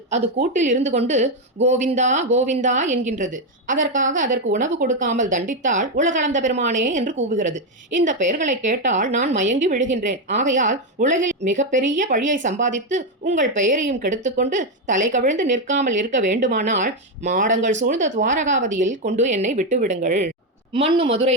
அது கூட்டில் இருந்து கொண்டு கோவிந்தா கோவிந்தா என்கின்றது. அதற்காக அதற்கு உணவு கொடுக்காமல் தண்டித்தால் உலகளந்த பெருமானே என்று கூவுகிறது. இந்த பெயர்களை கேட்டால் நான் மயங்கி விழுகின்றேன். ஆகையால் உலகில் மிகப்பெரிய பழியை சம்பாதித்து உங்கள் பெயரையும் கெடுத்துக்கொண்டு தலை கவிழ்ந்து நிற்காமல் இருக்க வேண்டுமானால் மாடங்கள் சூழ்ந்த துவாரகாவதியில் கொண்டு என்னை விட்டுவிடுங்கள். மண்ணு மதுரை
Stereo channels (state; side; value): normal; both; correlation 0.06